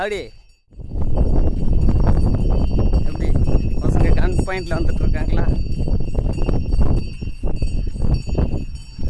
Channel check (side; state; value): both; identical; correlation 1.00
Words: எப்படி பசங்க கன் பாயிண்டில் வந்துட்டு இருக்காங்களா?